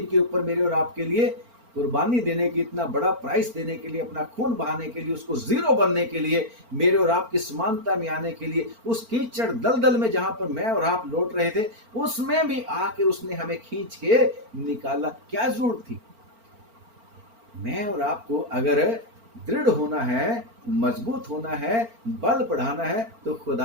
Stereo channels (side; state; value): left; late; 4.4 ms